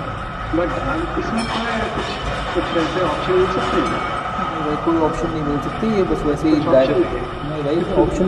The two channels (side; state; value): both; identical; correlation 1.00